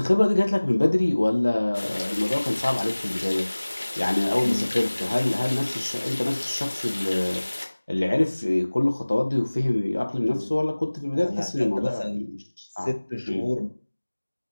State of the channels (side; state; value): both; inverted; correlation -1.00